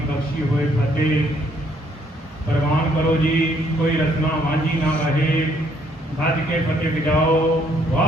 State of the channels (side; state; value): both; normal; correlation 0.67